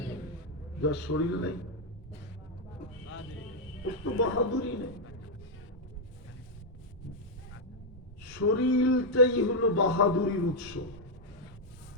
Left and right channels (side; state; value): both; normal; correlation -0.02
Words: যার শরীর নেই ওর তো বাহাদুরি নেই। শরীরটাই হলো বাহাদুরির উৎস।